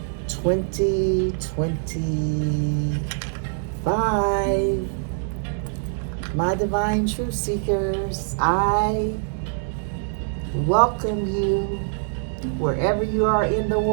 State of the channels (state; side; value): silent; left; digital silence